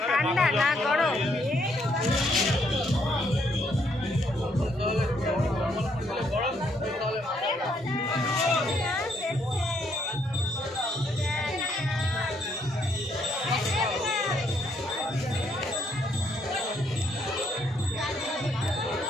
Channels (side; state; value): both; normal; correlation 0.71